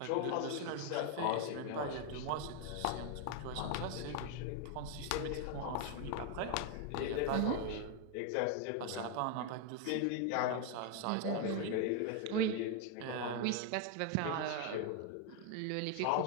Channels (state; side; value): different; both; correlation 0.01